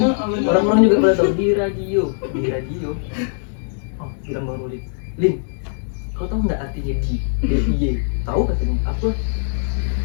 Orang-orang juga pada tahu di radio. Oh, bilang Bang Rolin. Lin, kau tahu nggak artinya di? DIY. Tahu katanya? Apa?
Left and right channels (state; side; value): silent; right; digital silence